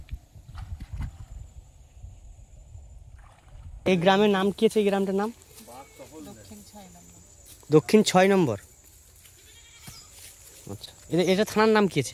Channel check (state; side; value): identical; both; correlation 1.00